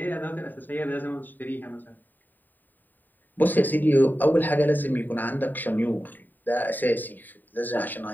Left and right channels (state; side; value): late; right; 0.089 ms